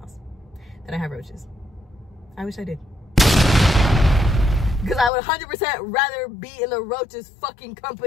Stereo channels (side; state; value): right; drops out; at 5.1 s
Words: That I have roaches. I wish I did. Because I would 100% rather be in the roaches fucking